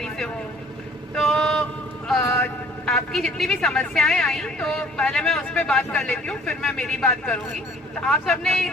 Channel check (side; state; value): both; normal; correlation 0.54